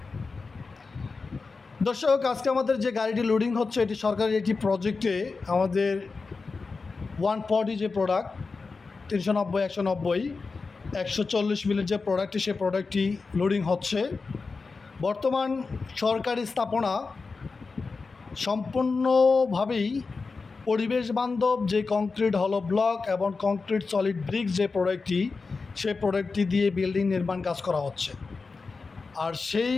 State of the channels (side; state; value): right; quieter; 4.3 dB